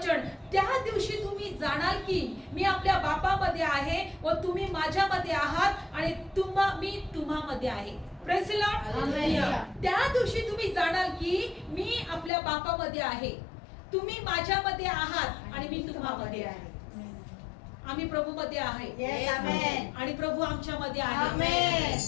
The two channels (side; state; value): right; drops out; at 12.3 s